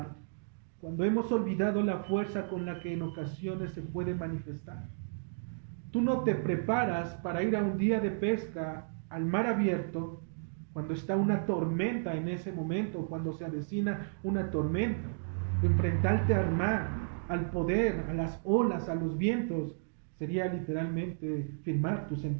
cuando hemos olvidado la fuerza con la que en ocasiones se puede manifestar? Tú no te preparas para ir a un día de pesca al mar abierto cuando está una tormenta en ese momento, cuando se avecina una tormenta. Enfrentarte al mar, al poder, a las olas, a los vientos, sería literalmente firmar tu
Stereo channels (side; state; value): left; silent; digital silence